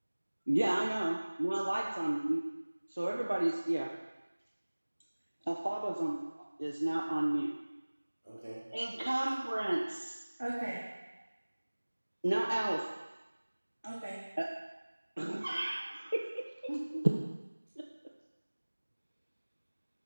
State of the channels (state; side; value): inverted; both; correlation -1.00